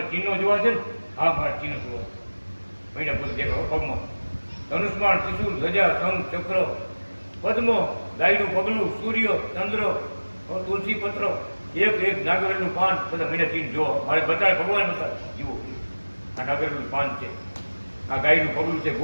ચીનો જોવા છે ને? હા મારા ચીનો જોવા. મહિના બોલ દેખાવ પગમાં ધનુષ્માન, ત્રિશુલ, ધજા, શંખ, ચક્ર, પદ્મ, ગાયનું પગલું, સૂર્ય, ચંદ્ર, તુલસી પત્ર, એક નાગરેલું પાન, બધા મહિના ચીન જો મારે બતાવે ભગવાન બતાવે. જુઓ આ નાગરેલું પાન છે, આ ગાયનું પગલું છે,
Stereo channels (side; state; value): both; inverted; correlation -1.00